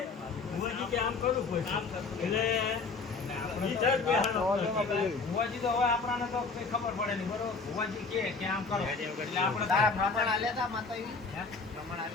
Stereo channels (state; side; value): quieter; right; 4.4 dB